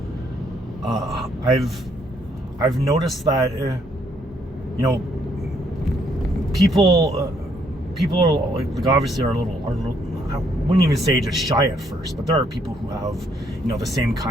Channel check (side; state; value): both; normal; correlation 0.70